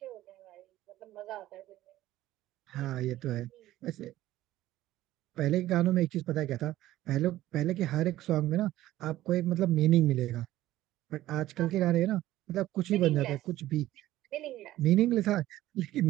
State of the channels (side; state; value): left; quieter; 15.0 dB